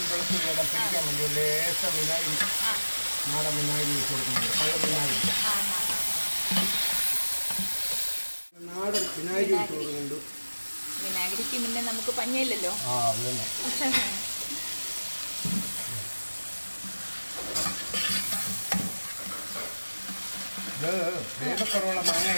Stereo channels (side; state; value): both; inverted; correlation -1.00